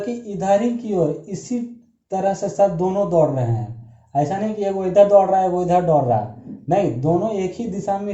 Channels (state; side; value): identical; both; correlation 1.00